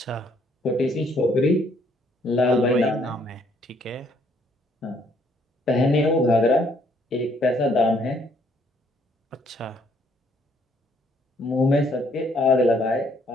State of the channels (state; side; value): normal; both; correlation 0.66